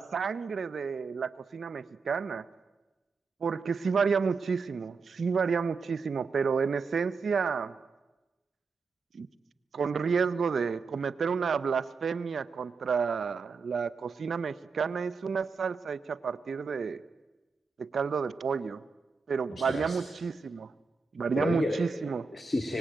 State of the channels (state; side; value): quieter; left; 4.8 dB